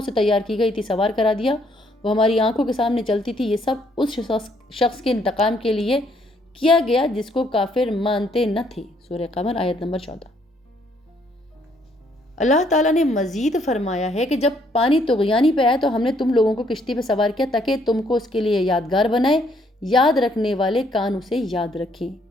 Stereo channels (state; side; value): normal; both; correlation 0.68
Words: سے تیار کی گئی تھی سوار کرا دیا، وہ ہماری آنکھوں کے سامنے چلتی تھی۔ یہ سب اس شخص کے انتقام کے لیے کیا گیا جس کو کافر مانتے نہ تھے۔ سورہ قمر آیت نمبر 14۔ اللہ تعالیٰ نے مزید فرمایا ہے کہ جب پانی طغیانی پہ آئے تو ہم نے تم لوگوں کو کشتی پہ سوار کیا تاکہ تم کو اس کے لیے یادگار بنائے، یاد رکھنے والے کان اسے یاد رکھیں۔